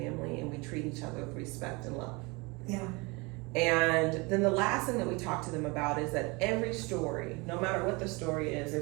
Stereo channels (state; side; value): quieter; left; 26.6 dB